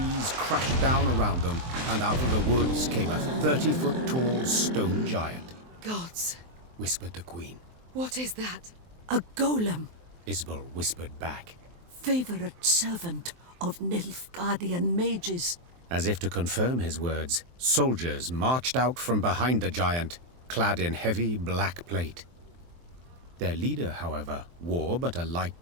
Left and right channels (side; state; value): left; late; 23 ms